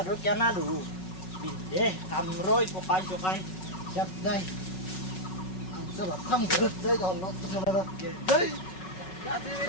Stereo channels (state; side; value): late; right; 5.4 ms